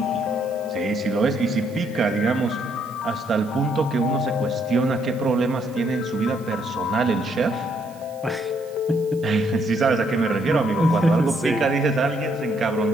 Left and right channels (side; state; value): right; noise; hiss, 25 dB below the sound